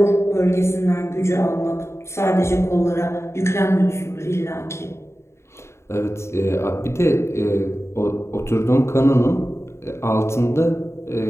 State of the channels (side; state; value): right; late; 0.13 ms